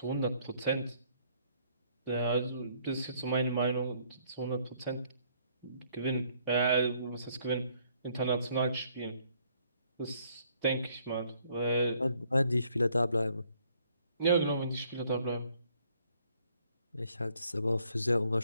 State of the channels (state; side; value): inverted; both; correlation -0.66